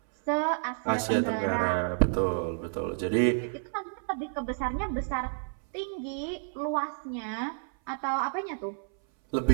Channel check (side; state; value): left; silent; 58 dB below the other